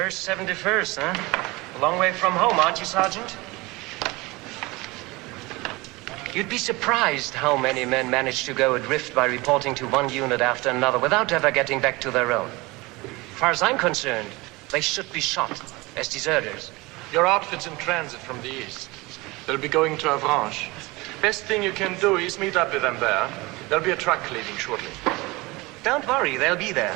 71st, huh? A long way from home, aren't you, Sergeant? You'd be surprised how many men manage to go adrift by reporting to one unit after another without ever getting back to their own. As far as I'm concerned, they should be shot as deserters. Your outfit's in transit from the east. They'll be going to Avranches. Best thing you can do is meet up with them there. There'll be a truck leaving shortly. Don't worry, they'll be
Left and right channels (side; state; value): left; quieter; 22.9 dB